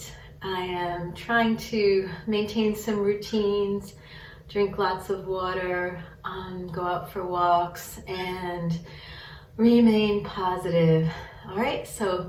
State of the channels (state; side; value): identical; both; correlation 1.00